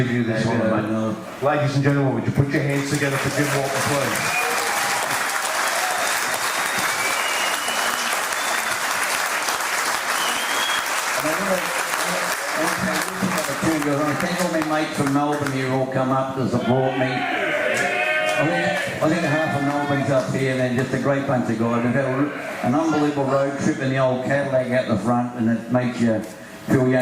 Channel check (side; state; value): both; identical; correlation 1.00